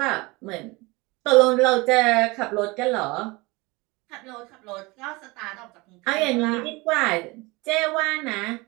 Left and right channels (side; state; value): left; quieter; 24.3 dB